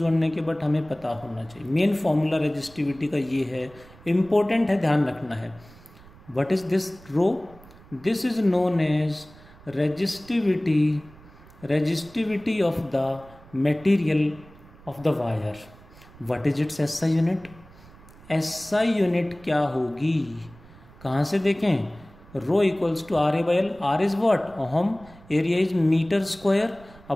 होने के, बट हमें पता होना चाहिए। मेन फॉर्मूला रेजिस्टिविटी का ये है, इम्पोर्टेंट है, ध्यान रखना है। What is this rho? This is known as resistivity of the material of the wire. What is its SI unit? SI unit क्या होगी? कहाँ से देखें? Rho equals to RA by L। R is what? Ohm. Area is metre square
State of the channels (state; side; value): noise; right; rumble, 23 dB below the sound